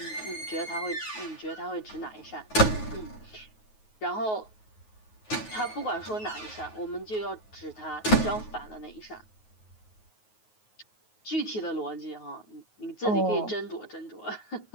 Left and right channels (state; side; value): late; right; 9.4 ms